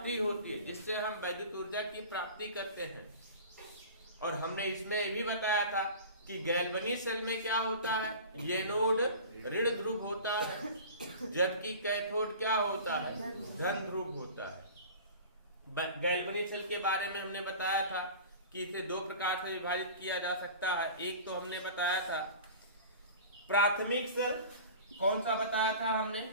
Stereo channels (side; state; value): both; inverted; correlation -0.38